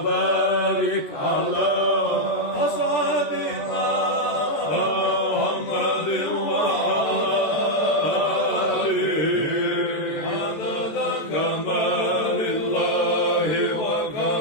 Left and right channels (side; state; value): right; late; 14 ms